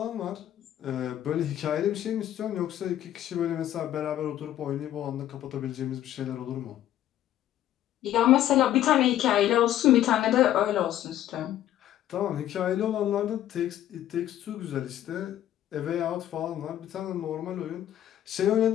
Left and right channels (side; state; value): right; quieter; 12.3 dB